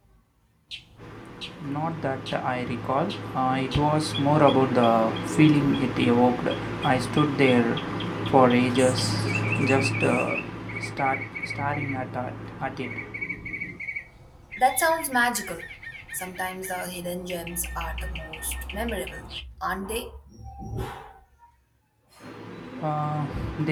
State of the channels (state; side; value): identical; both; correlation 1.00